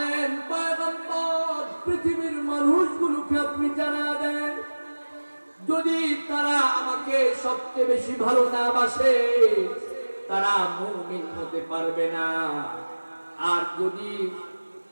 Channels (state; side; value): inverted; both; correlation -1.00